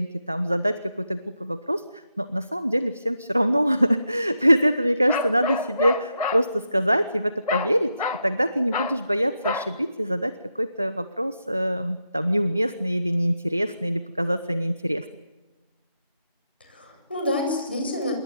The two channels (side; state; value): both; inverted; correlation -0.85